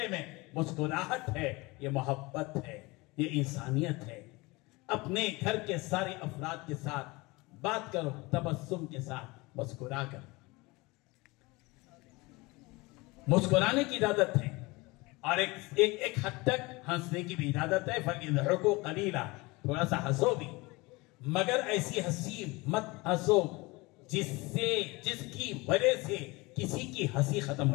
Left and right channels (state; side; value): quieter; right; 23.7 dB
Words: में मुस्कुराहट है। ये मोहब्बत है, ये इंसानियत है। अपने घर के सारे अफराद के साथ बात करो, तबस्सुम के साथ मुस्कुरा कर। मुस्कुराने की इजाजत है और एक हद तक हंसने की भी इजाजत है। फक़िज़हकू क़लीला, थोड़ा सा हंसो भी, मगर ऐसी हंसी मत हंसो जिसकी वजह से किसी की हंसी खत्म